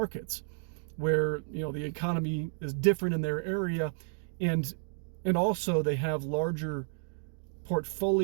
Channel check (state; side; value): silent; left; digital silence